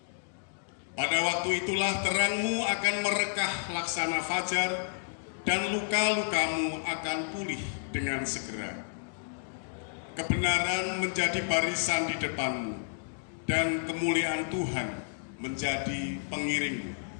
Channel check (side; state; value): right; silent; digital silence